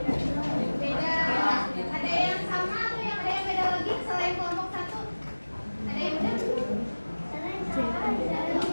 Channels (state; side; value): inverted; both; correlation -1.00